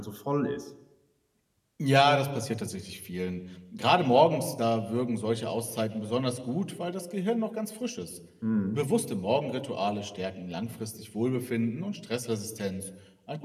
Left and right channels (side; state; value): both; identical; correlation 1.00